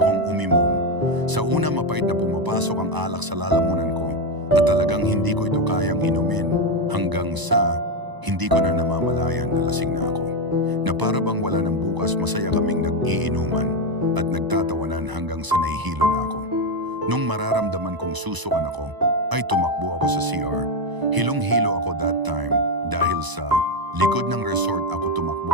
umimom. Sa una mapait na pumapasok ang alak sa lalamunan ko at talagang hindi ko ito kayang inumin hanggang sa hindi ko na namamalayan na lasing na ako. Na para bang wala ng bukas masaya kaming nag-iinuman at nagtatawanan hanggang sa nahihilo na ako. Nung mararamdaman kong susukan ako, ay tumakbo ako sa CR. Hilong-hilo ako that time dahil sa likod ng resort ako tumakbo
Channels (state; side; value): late; left; 1.0 ms